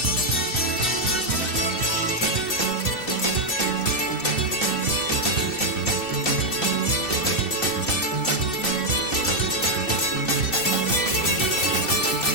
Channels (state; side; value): late; right; 2.7 ms